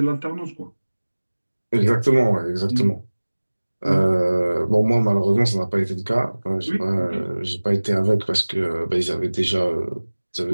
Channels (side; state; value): both; inverted; correlation -1.00